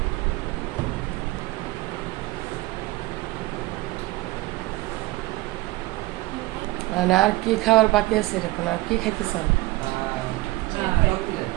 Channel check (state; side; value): quieter; left; 20.1 dB